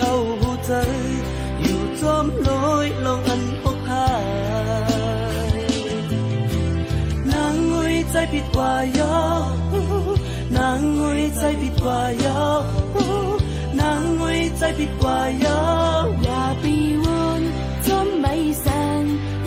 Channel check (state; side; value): identical; both; correlation 1.00